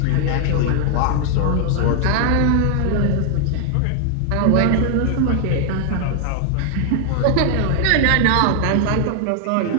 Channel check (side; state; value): both; different; correlation 0.00